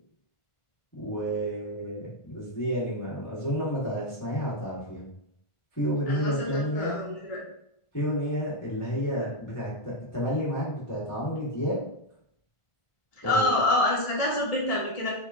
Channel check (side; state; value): right; late; 1.4 ms